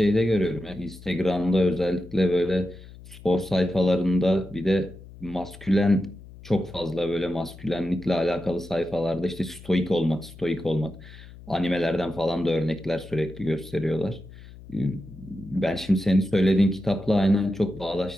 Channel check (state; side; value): noise; left; hum, 18 dB below the sound